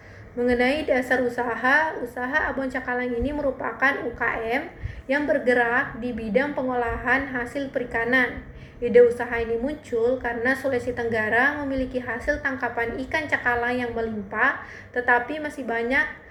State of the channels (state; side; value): identical; both; correlation 1.00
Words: Mengenai dasar usaha Abon Cakalang ini merupakan UKM yang bergerak di bidang pengolahan hasil perikanan. Ide usaha ini muncul karena Sulawesi Tenggara memiliki hasil tangkapan ikan cakalang yang melimpah, tetapi masih banyak